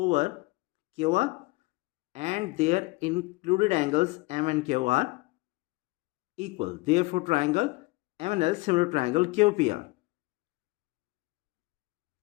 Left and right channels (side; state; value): right; quieter; 23.4 dB